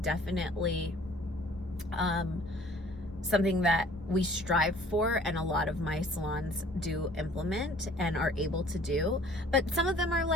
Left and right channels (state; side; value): normal; both; correlation 0.53